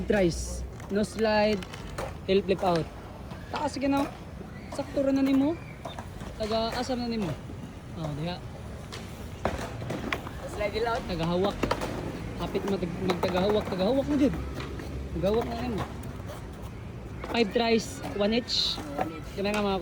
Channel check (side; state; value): both; identical; correlation 1.00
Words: tries. No slide. Tail flip out. Taas sige na. Sakto ra na nimo. Taga asa na nimo. Oh, diha. Slide it out. Tagahawak. Hapit magtagahawak. Tagahawak na jud. Tagahawak na nimo. 5 tries, 1 each. Ganahan ka mga